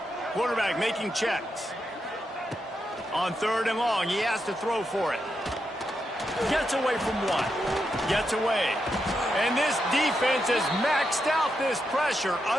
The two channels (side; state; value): both; normal; correlation 0.84